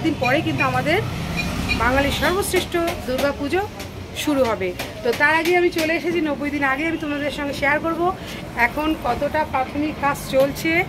দিন পরে কিন্তু আমাদের বাঙালির সর্বশ্রেষ্ঠ দুর্গা পুজো শুরু হবে। তো তার আগে আমি চলে এসেছি, 90 দিন আগে আমি তোমাদের সঙ্গে শেয়ার করব এখন কতটা প্রাথমিক কাজ চলছে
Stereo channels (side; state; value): both; identical; correlation 1.00